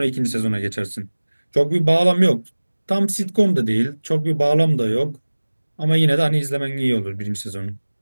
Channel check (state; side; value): inverted; both; correlation -1.00